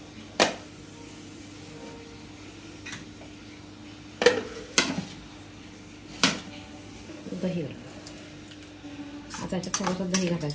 दही आता याच्यात थोडंसं दही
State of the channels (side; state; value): both; identical; correlation 1.00